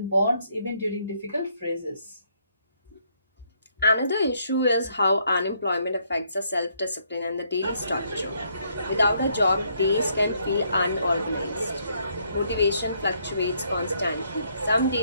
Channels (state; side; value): inverted; both; correlation -0.71